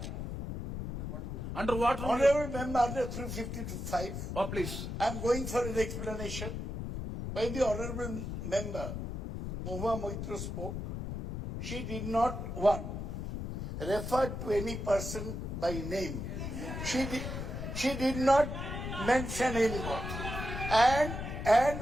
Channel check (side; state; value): left; noise; rumble, 5 dB below the sound